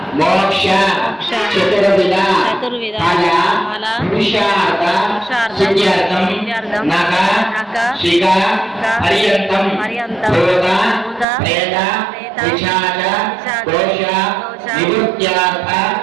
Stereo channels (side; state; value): left; drops out; at 11.2 s